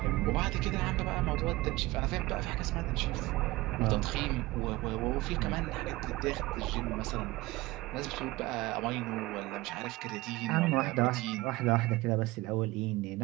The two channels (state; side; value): quieter; left; 20.1 dB